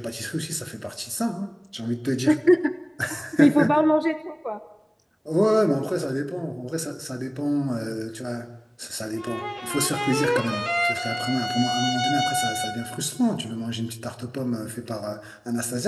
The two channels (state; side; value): identical; both; correlation 1.00